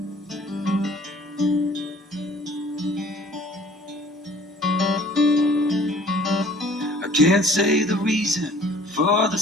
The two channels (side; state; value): both; normal; correlation 0.53